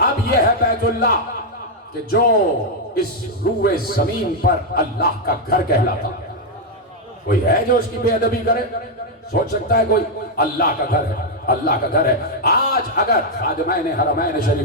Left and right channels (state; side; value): normal; both; correlation 0.00